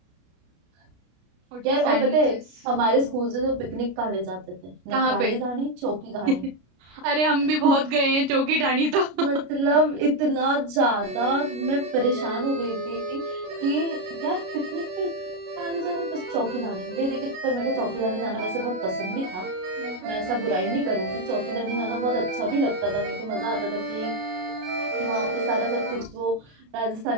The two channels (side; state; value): left; late; 33 ms